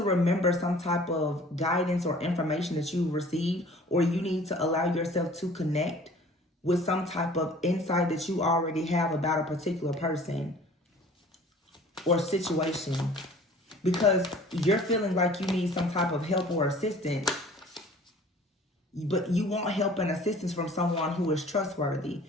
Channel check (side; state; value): both; normal; correlation 0.49